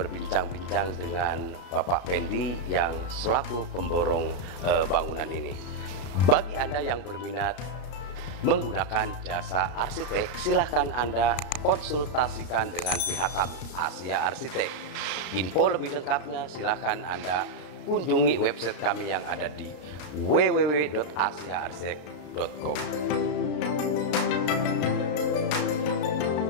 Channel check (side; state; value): right; late; 33 ms